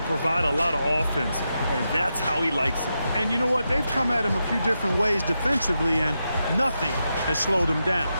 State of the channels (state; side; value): inverted; both; correlation -0.87